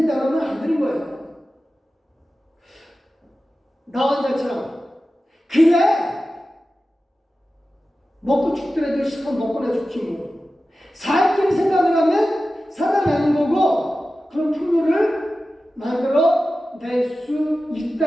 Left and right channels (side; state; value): both; normal; correlation 0.94